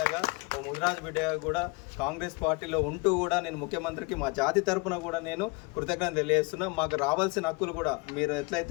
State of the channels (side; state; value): right; quieter; 26.7 dB